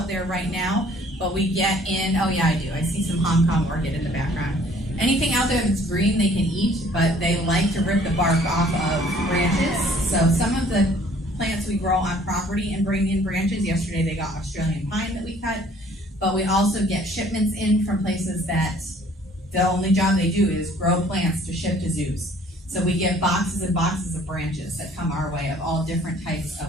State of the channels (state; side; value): normal; both; correlation 0.57